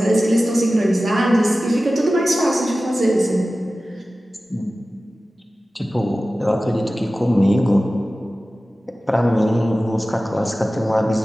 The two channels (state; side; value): normal; both; correlation 0.96